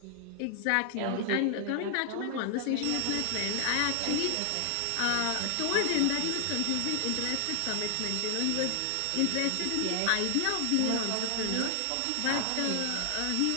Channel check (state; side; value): different; both; correlation 0.00